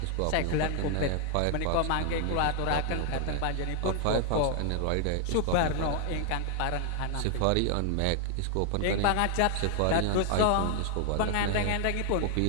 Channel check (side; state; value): both; different; correlation 0.00